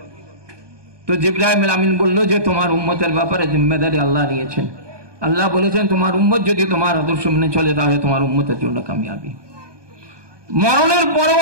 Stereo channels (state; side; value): late; left; 1.2 ms